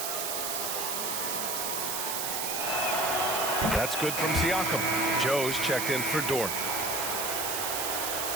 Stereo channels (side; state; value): right; noise; hiss, 1 dB below the sound